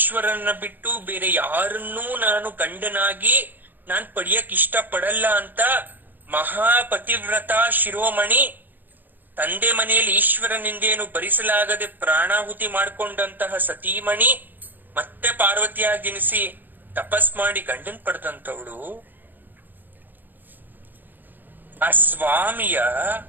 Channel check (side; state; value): left; late; 0.089 ms